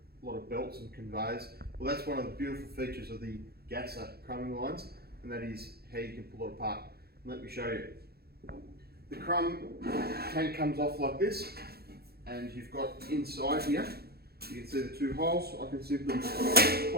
a lot of belts and conveyors. Well, that's one of the beautiful features of the Gasa crumbing lines, and that is how you can pull it apart. Let me show you. The crumb tank comes off like this, and you've got inside here, you can see the two holes. I can simply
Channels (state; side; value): late; left; 0.46 ms